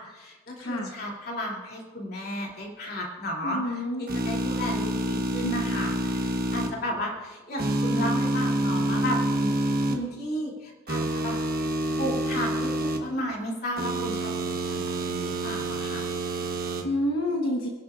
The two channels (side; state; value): both; normal; correlation 0.59